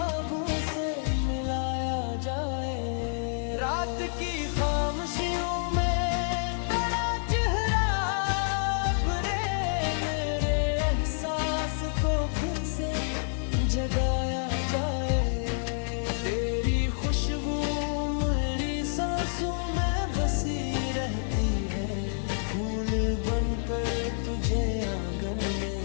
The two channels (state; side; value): silent; right; digital silence